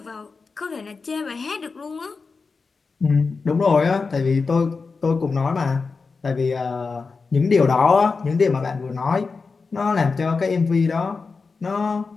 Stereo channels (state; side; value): quieter; right; 4.5 dB